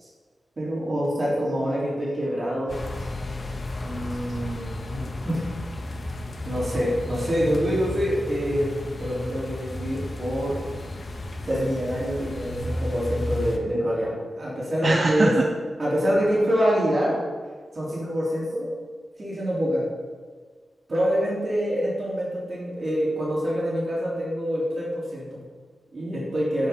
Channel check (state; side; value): normal; both; correlation 0.92